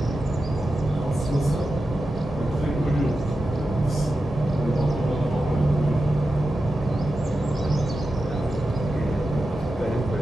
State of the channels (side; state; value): both; normal; correlation 0.91